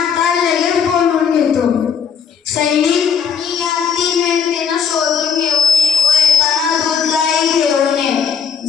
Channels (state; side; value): quieter; right; 6.9 dB